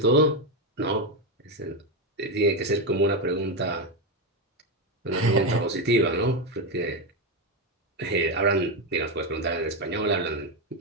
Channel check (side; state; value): both; normal; correlation 0.09